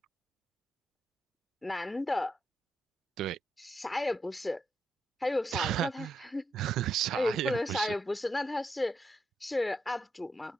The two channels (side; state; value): both; normal; correlation 0.81